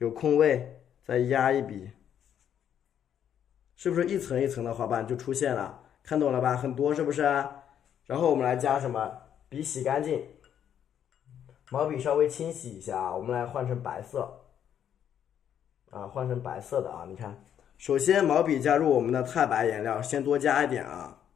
空位，再压一笔，是不是一层一层的花瓣就出现了？看懂了吧？很多是不是？然后我们来加什么？笔洗干净，毛笔稍微清洗一下啊，我们来换成白色啊，换成白色的啊。你看，首先毛笔加入我们的太白颜料，先多加一点啊，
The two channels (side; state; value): right; quieter; 9.4 dB